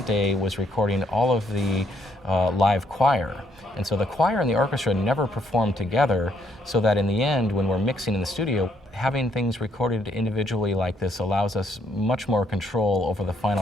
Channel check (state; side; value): normal; both; correlation 0.70